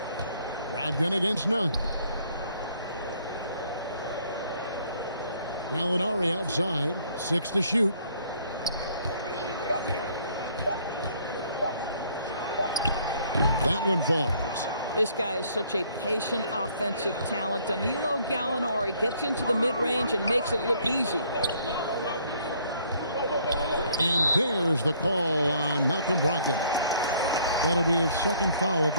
Brogdon against Nunn. Gallinari outside. 6 to shoot. That one falls. This guy is such a patient offensive talent. Danilo Gallinari gets into the mid-range and makes it look easy. And there's the call on Malcolm Brogdon. That'll be his 2nd foul of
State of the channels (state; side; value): inverted; both; correlation -0.62